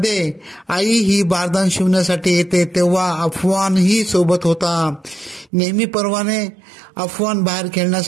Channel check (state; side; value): drops out; left; at 5.5 s